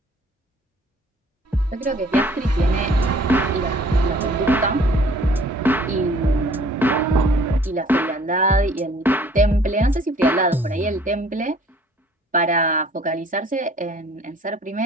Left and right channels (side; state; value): both; normal; correlation 0.55